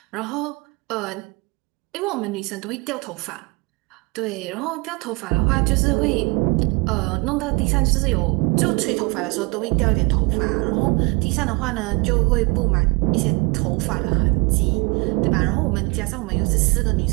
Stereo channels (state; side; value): quieter; left; 28.9 dB